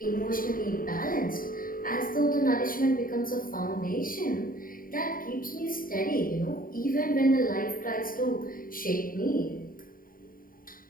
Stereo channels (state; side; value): late; right; 0.41 ms